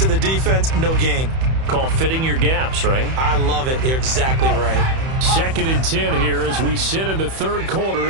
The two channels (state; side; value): late; left; 31 ms